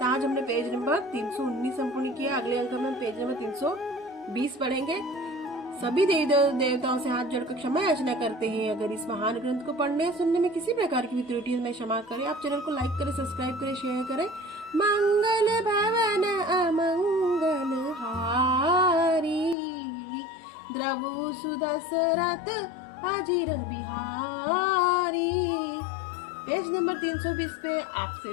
आज हमने पेज नंबर 319 संपूर्ण किया। अगले अंक में पेज नंबर 320 पढ़ेंगे। सभी देवी देवताओं से हाथ जोड़कर क्षमा याचना करते हैं। अगर इस महान ग्रंथ को पढ़ने सुनने में किसी प्रकार की भी त्रुटि है, मैं क्षमा करें। आप चैनल को लाइक करें, सब्सक्राइब करें, शेयर करें। मंगल भवन अमंगल हारी, द्रवु सुदशरथ अजीर बिहारी। पेज नंबर 320 पे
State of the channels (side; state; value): right; drops out; at 19.6 s